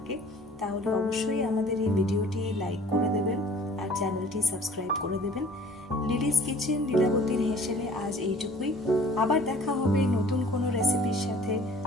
তাহলে অবশ্যই আমাদের এই ভিডিওটি লাইক করে দেবেন আর চ্যানেলটি সাবস্ক্রাইব করে দেবেন। লিলিস কিচেন, লীলাবতীর হেসেলে আজ এইটুকুই। আবার দেখা হবে নতুন কোনো রেসিপির সাথে।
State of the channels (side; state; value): both; normal; correlation 0.51